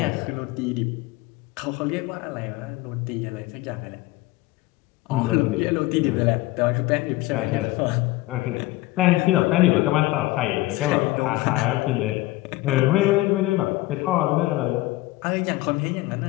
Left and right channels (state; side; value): quieter; right; 18.9 dB